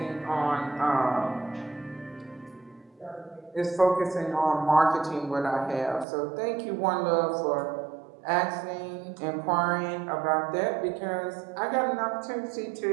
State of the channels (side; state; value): left; drops out; at 6.1 s